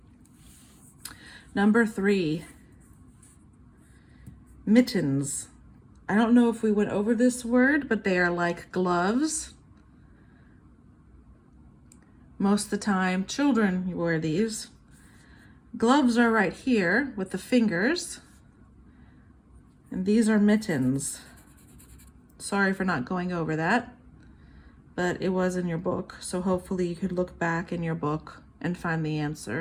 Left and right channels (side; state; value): both; identical; correlation 1.00